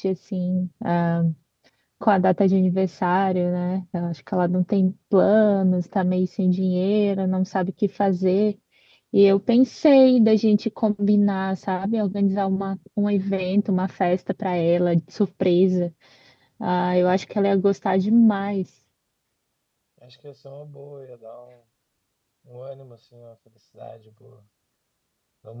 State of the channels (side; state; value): both; identical; correlation 1.00